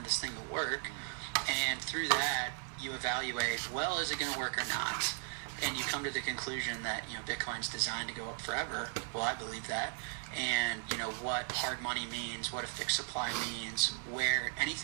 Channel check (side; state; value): left; silent; 53 dB below the other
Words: this thing to work. And through that, you evaluate, well, is it going to work or not? And you come to the conclusion that, Bitcoin's designed to go up forever. Well, I believe that. And, what hard money means, what a fixed supply means, where